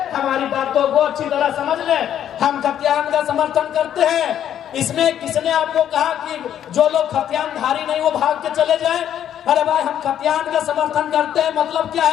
हमारी बातों को अच्छी तरह समझ ले। हम खतियान का समर्थन करते हैं। इसमें किसने आपको कहा कि जो लोग खतियानधारी नहीं वो भाग के चले जाए? अरे भाई हम खतियान का समर्थन करते हैं, मतलब क्या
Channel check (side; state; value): right; quieter; 10.2 dB